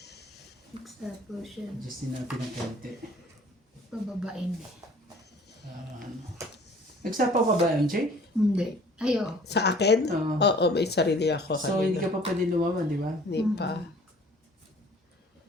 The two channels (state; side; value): normal; both; correlation 0.51